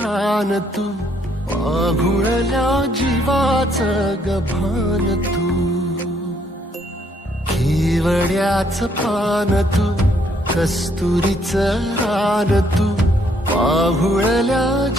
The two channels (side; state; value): both; normal; correlation 0.69